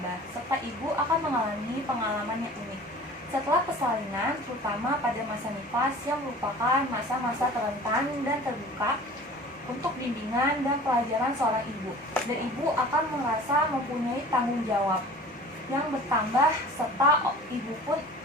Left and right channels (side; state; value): both; normal; correlation 0.43